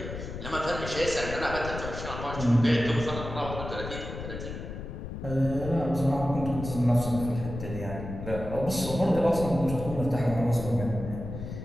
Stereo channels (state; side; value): noise; left; rumble, 8 dB below the sound